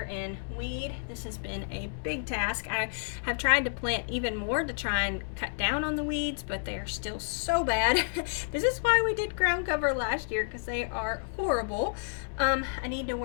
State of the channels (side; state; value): right; silent; digital silence